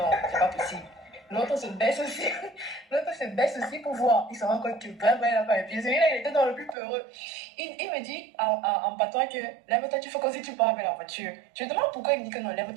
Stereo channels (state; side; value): drops out; left; at 6.8 s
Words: c'est pas possible. L'autre se baisse aussi pour voir. Il se rend compte que vraiment il n'a pas les pieds. Celui-là, il était dans le plus peureux. Il me dit en patois que lève-toi, tu fais comme si tu pars avec la voiture. Je me demande pourquoi il me dit que non,